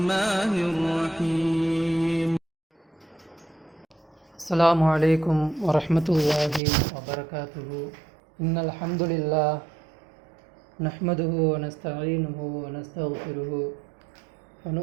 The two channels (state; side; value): drops out; left; at 6.6 s